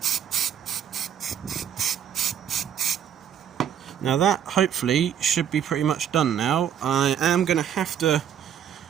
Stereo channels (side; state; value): left; quieter; 9.3 dB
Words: Now that hopefully should be pretty much done now. I am going to have to